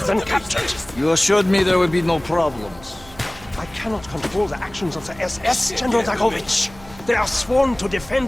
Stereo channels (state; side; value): noise; right; hum, 20 dB below the sound